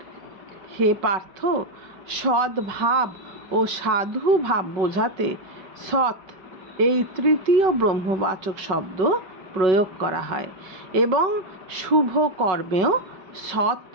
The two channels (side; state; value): left; late; 5.4 ms